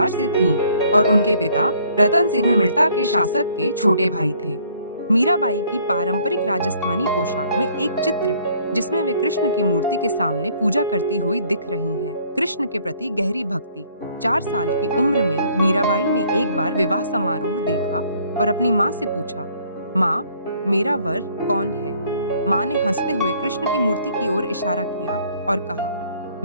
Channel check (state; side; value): inverted; both; correlation -0.61